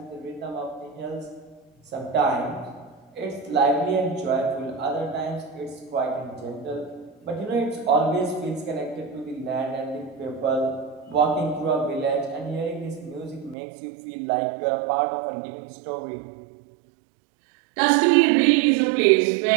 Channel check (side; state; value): left; drops out; at 13.6 s